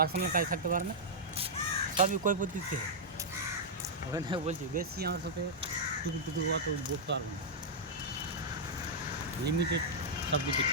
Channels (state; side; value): normal; both; correlation -0.07